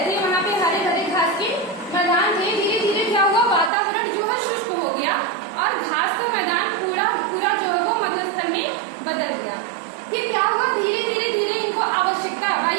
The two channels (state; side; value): drops out; left; at 3.7 s